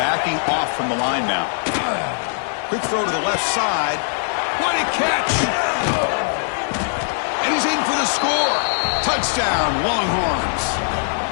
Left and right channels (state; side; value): silent; right; 61 dB below the other